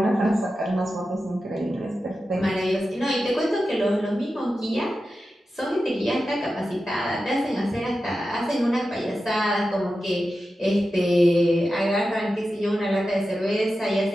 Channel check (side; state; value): both; normal; correlation 0.92